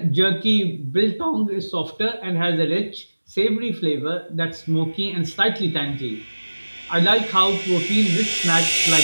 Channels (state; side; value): inverted; both; correlation -1.00